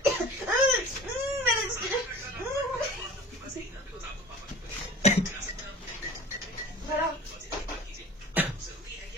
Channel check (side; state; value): both; normal; correlation 0.42